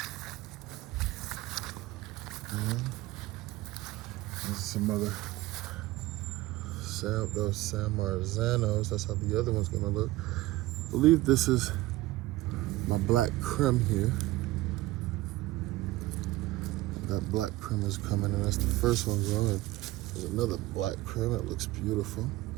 and there's some other those San Marzanos. That's how the other one's gonna look. I believe this is my black creme here. And that black creme is coming, and that's the first one growing. There's another black creme. It looks beautiful.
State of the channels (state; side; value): quieter; left; 18.0 dB